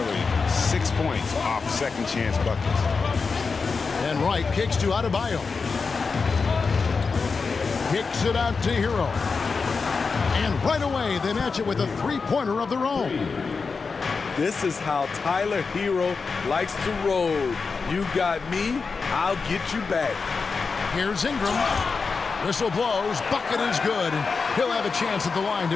6 points off second chance buckets. And Wright kicks to Adebayo. Kicks it out to Hero. And right away, they match it with a three-pointer of their own. This is how Tyler Hero likes to roll. You got me, I'll get you back. Here's Ingram. Whistle blows, bucket is good, and he'll have a chance at the line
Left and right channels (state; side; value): quieter; right; 4.8 dB